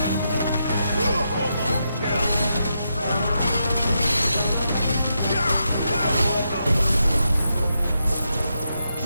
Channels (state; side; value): inverted; both; correlation -0.84